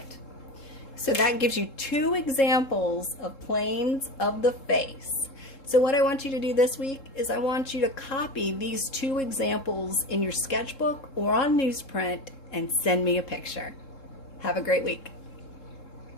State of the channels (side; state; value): right; late; 3.7 ms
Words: So that gives you 2 examples of planes of the face. So what I want you to do this week is I want you to copy these 2 examples in your sketchbook or on newsprint and send me a picture. Have a great week.